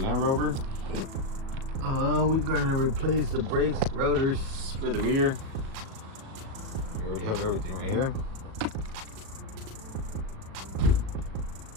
Rover. We're gonna replace the brakes, rotors for the rear. We already have everything right here.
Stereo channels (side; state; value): left; late; 37 ms